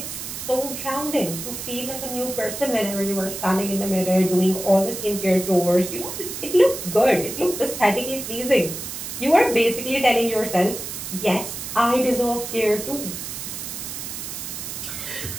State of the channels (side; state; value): right; noise; hiss, 7 dB below the sound